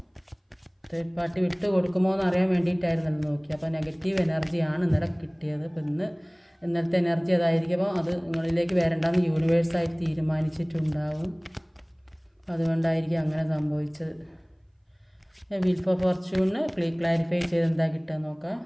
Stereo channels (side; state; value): both; identical; correlation 1.00